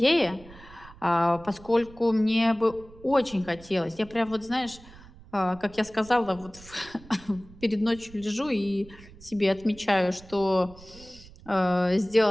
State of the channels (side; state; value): right; noise; rumble, 21 dB below the sound